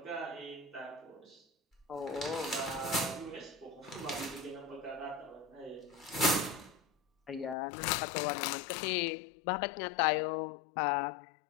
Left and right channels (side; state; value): right; drops out; at 7.6 s